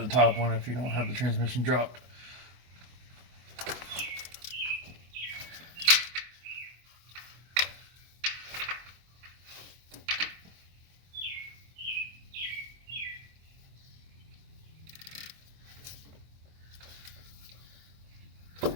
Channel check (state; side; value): late; left; 24 ms